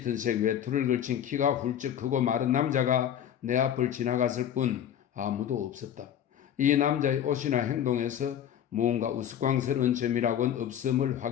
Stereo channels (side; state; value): right; quieter; 9.9 dB